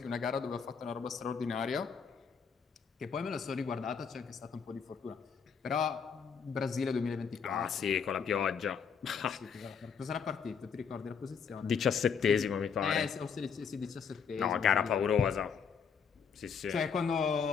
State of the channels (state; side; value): quieter; right; 6.4 dB